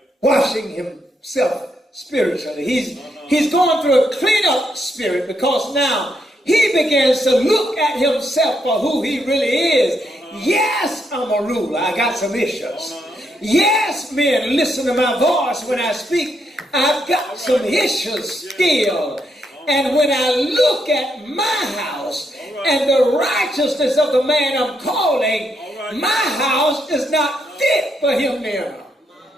Washing himself spiritually. He's going through a clean-up spirit because now he begins to look at himself for who he really is. Yes, I'm a ruler. I got some issues. Yes, men, listen to my voice when I speak. I've got some issues still. And when I look at my house and the righteousness of the man I'm calling, my house is not fit for him now.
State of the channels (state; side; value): normal; both; correlation 0.78